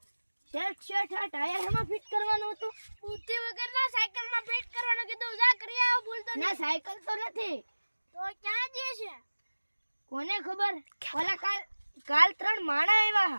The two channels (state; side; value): inverted; both; correlation -1.00